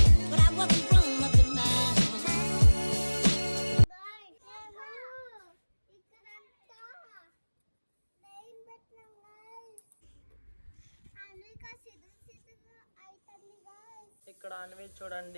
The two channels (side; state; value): both; inverted; correlation -1.00